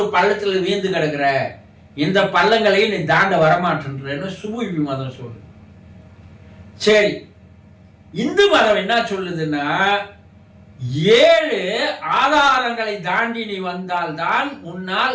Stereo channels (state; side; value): identical; both; correlation 1.00